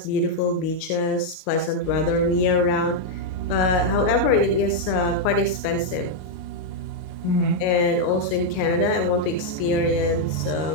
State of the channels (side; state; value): right; late; 38 ms